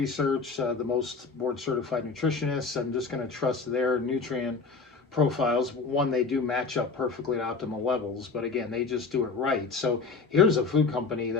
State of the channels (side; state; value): right; quieter; 4.5 dB